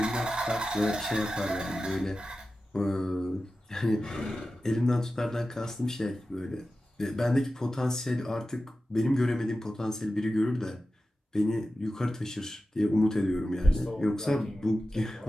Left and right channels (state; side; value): normal; both; correlation 0.93